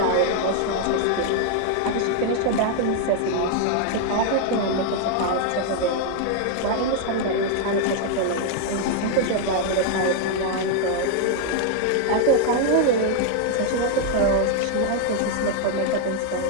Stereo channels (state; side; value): different; both; correlation 0.00